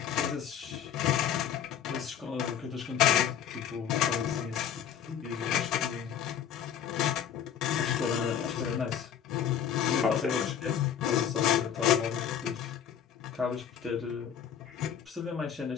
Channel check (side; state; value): right; quieter; 8.9 dB